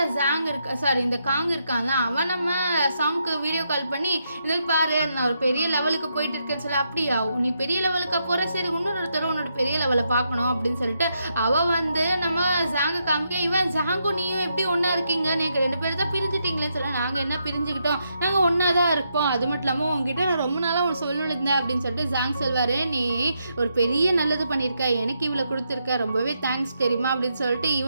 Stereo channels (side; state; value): both; inverted; correlation -0.80